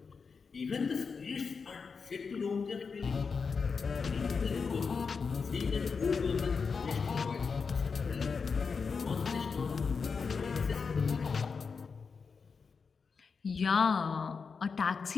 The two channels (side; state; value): right; quieter; 5.3 dB